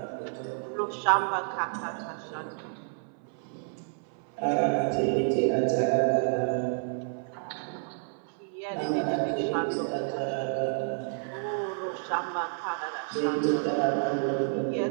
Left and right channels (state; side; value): silent; left; 58 dB below the other